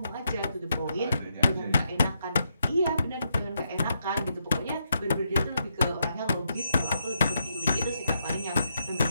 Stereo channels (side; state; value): both; inverted; correlation -0.80